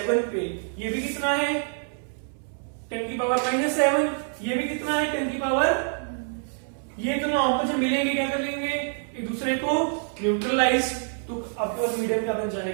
पे ये भी कितना है? 10 की पावर -7। ये भी कितना है? 10 की पावर। ये दोनों आपस में मिलेंगे, क्या कर लेंगे? एक दूसरे को न्यूट्रलाइज, तो आपके पास मीडियम क्या बन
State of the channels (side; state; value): left; silent; 60 dB below the other